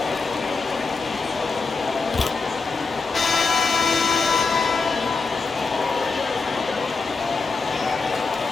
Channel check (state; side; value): quieter; right; 4.4 dB